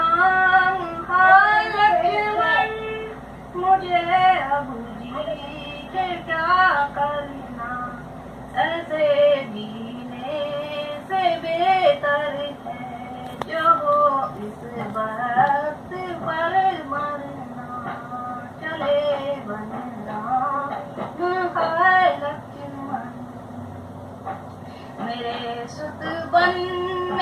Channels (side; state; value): both; identical; correlation 1.00